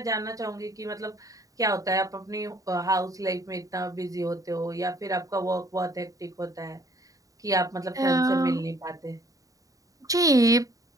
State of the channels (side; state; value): left; late; 0.16 ms